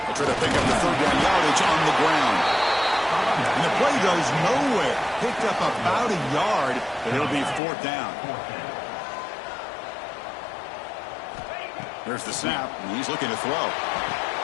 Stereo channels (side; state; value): right; drops out; at 7.6 s